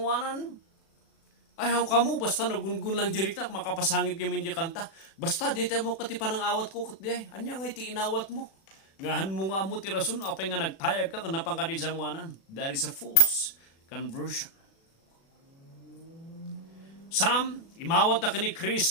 Ay hang kamo, basta nagungun lang jirik na, makapasangit kami di kanta. Basta di tayo mo kati panang awat ko kat di ay, anya ngay ti inawat mo. Ngahan mo nga mo tirasun, apay nga nagtayag ka, kanapang ka di sangwanan. That is a false conversion. Some, imawat na ka ni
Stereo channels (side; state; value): right; late; 36 ms